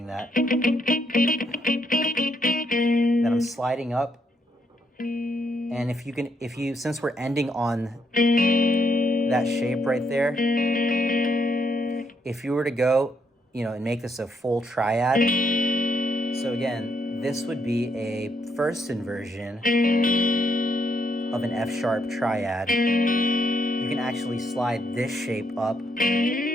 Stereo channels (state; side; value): normal; both; correlation 0.75